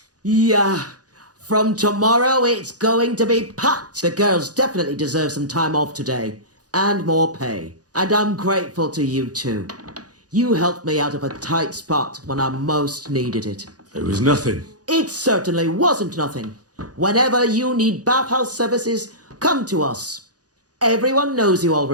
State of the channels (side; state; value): left; late; 0.68 ms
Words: Yeah. From tomorrow, it's going to be packed. The girls definitely deserve some time off today. And more pay. And I'm grateful to you too. You helped me out of a tight spot when I most needed it. It was nothing. It certainly wasn't nothing. Whenever you need bathhouse services, come to us. Everyone knows you